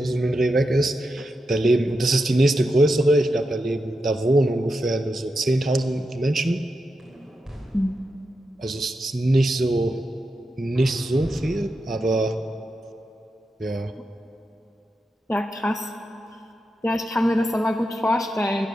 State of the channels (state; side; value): normal; both; correlation 0.87